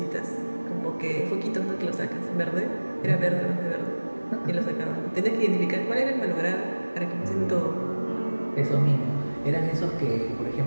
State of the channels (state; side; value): inverted; both; correlation -1.00